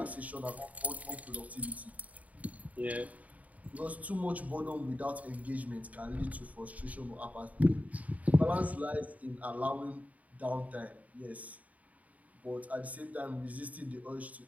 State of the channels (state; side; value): late; left; 0.071 ms